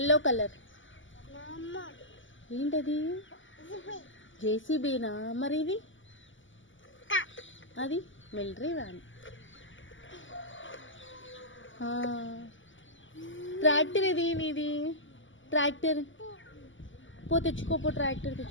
కలర్ ఏంటది? జేసీబీనా? మరి ఇది అది మిలిటరీ వ్యాన్. ట్రాక్టర్ ఇది నీది. ట్రాక్టర్ పో తెచ్చుకోపో, ట్రాక్టర్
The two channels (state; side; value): late; right; 0.55 ms